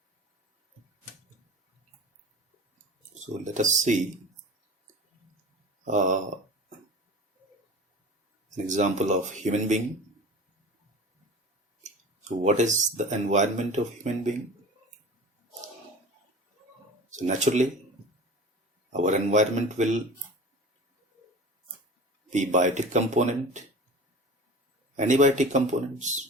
So let us see an example of human being. So what is the environment of human being? So naturally our environment will be biotic component and abiotic components.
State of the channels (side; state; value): both; normal; correlation 0.38